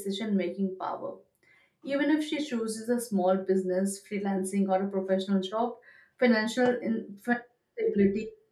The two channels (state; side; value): identical; both; correlation 1.00